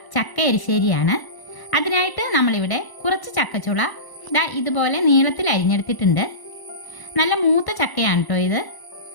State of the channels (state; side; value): late; right; 1.0 ms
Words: ചക്ക എരിശ്ശേരിയാണ്. അതിനായിട്ട് നമ്മളിവിടെ കുറച്ച് ചക്കച്ചുള ഇതുപോലെ നീളത്തിൽ അരിഞ്ഞെടുത്തിട്ടുണ്ട്. നല്ല മൂത്ത ചക്കയാണ് കേട്ടോ ഇത്.